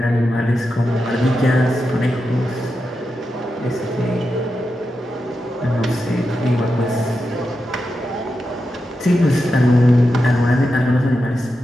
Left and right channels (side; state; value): both; normal; correlation 0.88